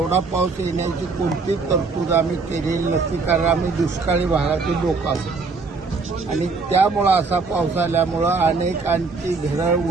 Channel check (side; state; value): left; quieter; 4.3 dB